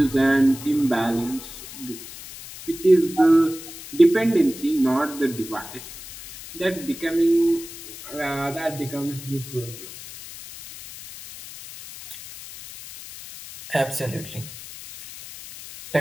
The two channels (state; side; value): noise; left; hiss, 14 dB below the sound